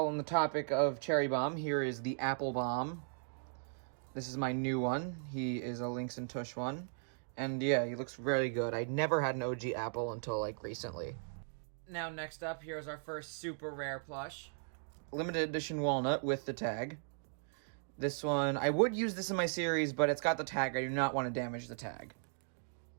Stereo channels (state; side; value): silent; left; digital silence